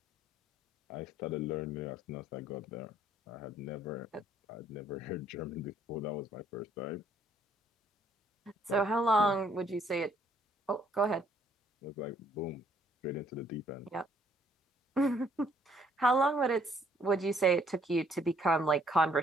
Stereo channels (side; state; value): both; normal; correlation 0.65